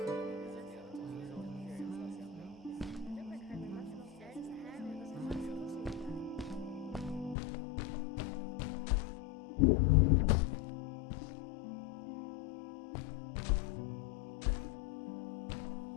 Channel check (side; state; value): right; drops out; at 7.4 s